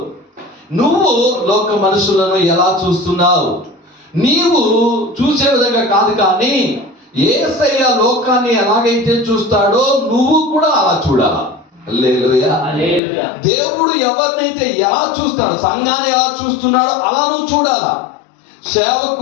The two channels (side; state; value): right; drops out; at 13.0 s